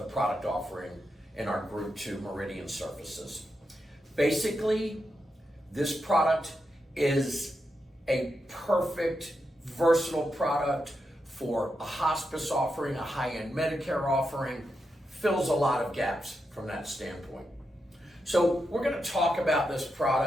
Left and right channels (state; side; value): normal; both; correlation 0.86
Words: product offering in our Group 2 Meridian surfaces. Basically, this product is a perfect, versatile product for a hospice offering, a high-end Medicare offering, fills a lot of gaps from that standpoint. So we're going to talk about this